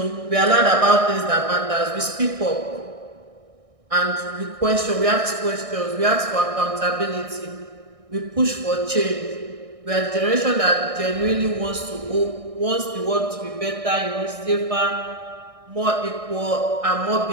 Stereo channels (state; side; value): late; left; 1.6 ms